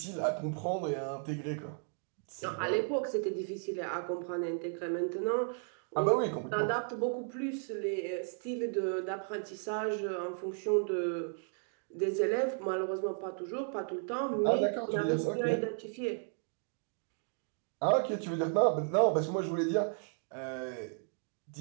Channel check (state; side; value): silent; left; 55 dB below the other